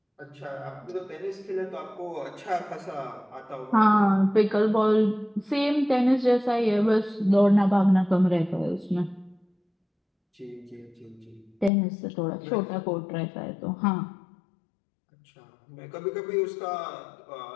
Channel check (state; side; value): drops out; right; at 11.7 s